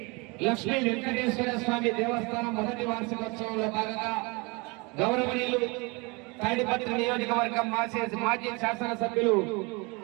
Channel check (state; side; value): quieter; left; 28.1 dB